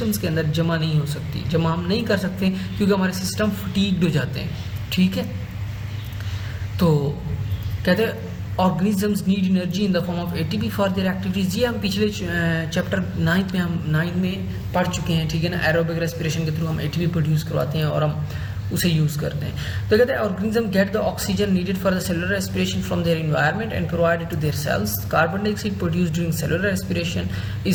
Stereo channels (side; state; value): both; identical; correlation 1.00